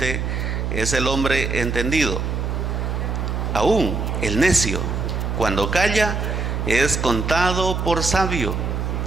es el hombre entendido. Aún el necio, cuando calla, es contado por sabio.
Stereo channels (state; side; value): noise; right; hum, 1 dB below the sound